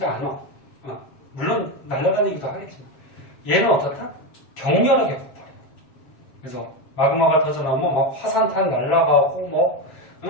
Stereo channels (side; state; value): right; late; 7.3 ms